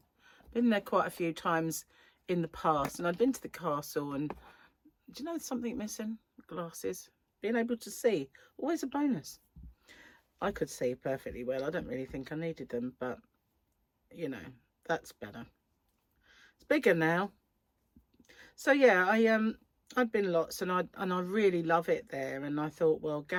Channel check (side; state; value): both; identical; correlation 1.00